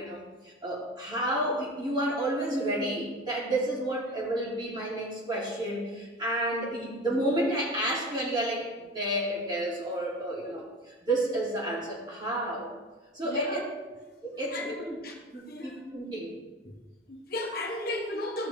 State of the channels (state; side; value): normal; both; correlation 0.33